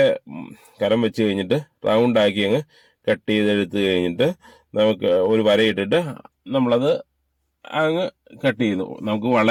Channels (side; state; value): both; identical; correlation 1.00